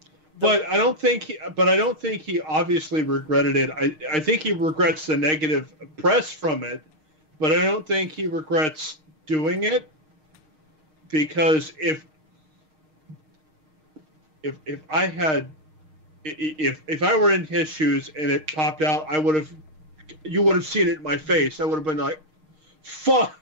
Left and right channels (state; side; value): late; left; 6.5 ms